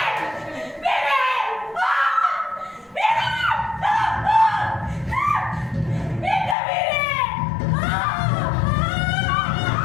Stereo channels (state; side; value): drops out; right; at 6.6 s